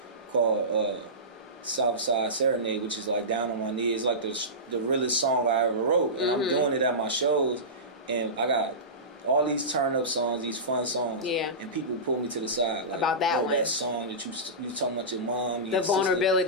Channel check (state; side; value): normal; both; correlation -0.19